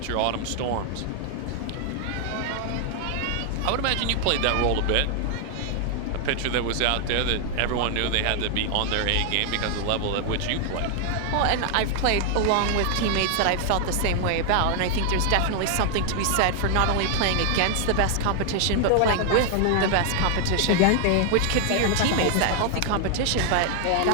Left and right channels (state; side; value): different; both; correlation 0.00